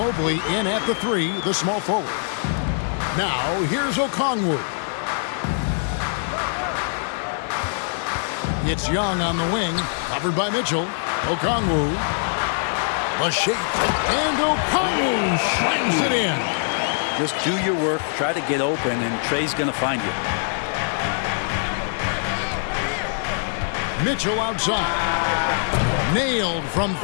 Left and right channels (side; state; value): right; silent; 63 dB below the other